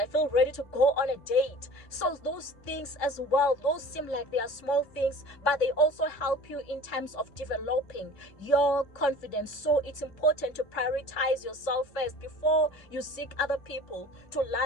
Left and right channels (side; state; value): right; late; 1.3 ms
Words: feel ready to go on a date. So those things as well, those seem like they are small things, but they also help you in terms of developing your confidence. So it's important to prioritize yourself first before you seek other people to